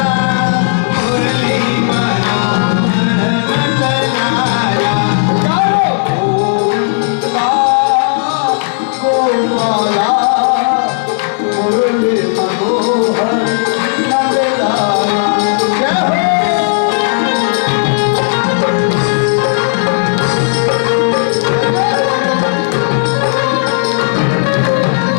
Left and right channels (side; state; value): right; silent; digital silence